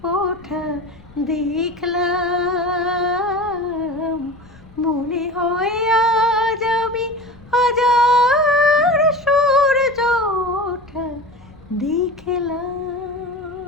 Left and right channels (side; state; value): left; noise; rumble, 24 dB below the sound